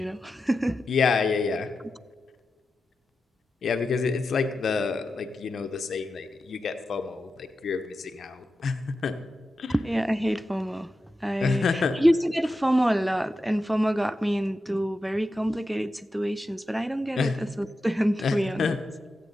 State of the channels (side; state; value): both; normal; correlation 0.90